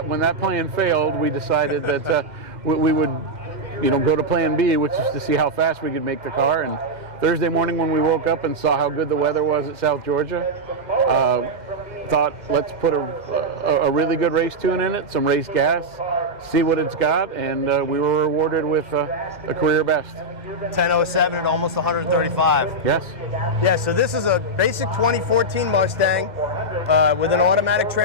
when that plan failed, we decided that we would, go to plan B, which is to see how fast we could make the car. And Thursday morning when we woke up and saw how good the weather was at South Georgia, thought let's put a really good race tune in it, some race gas, see what it's got, and we were rewarded with a career best. 10:07 at almost 135. Yes. Yeah, so this is a basic 2014 Mustang with an automatic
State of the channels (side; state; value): left; late; 2.0 ms